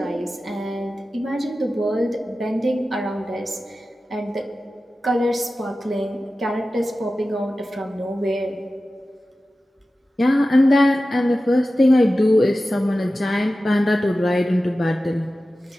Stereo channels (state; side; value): normal; both; correlation 0.94